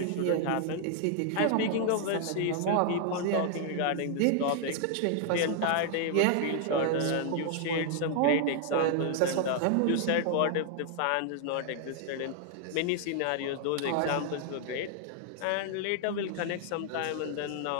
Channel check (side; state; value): both; different; correlation 0.00